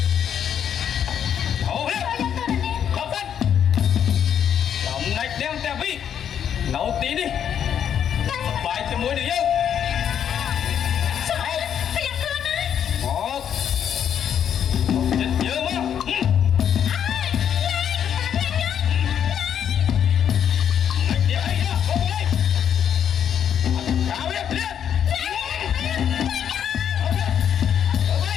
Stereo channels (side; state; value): right; quieter; 8.9 dB